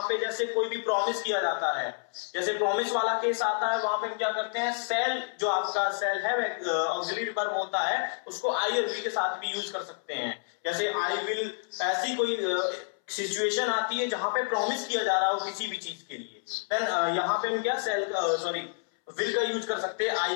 पे जैसे कोई भी प्रॉमिस किया जाता है, जैसे प्रॉमिस वाला केस आता है, वहां पे हम क्या करते हैं, शैल जो आपका शैल हैव ऑक्सिलरी वर्ब होता है उसको आई और वी के साथ भी यूज कर सकते हैं। जैसे आई विल, ऐसी कोई सिचुएशन आती है जहां पे प्रॉमिस किया जा रहा हो किसी भी चीज के लिए, देन यहाँ पे हम क्या विल का यूज कर सकते हैं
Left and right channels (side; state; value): right; silent; 58 dB below the other